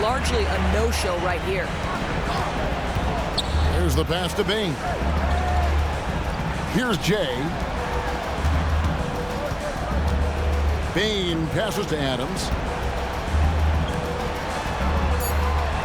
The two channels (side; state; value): both; identical; correlation 1.00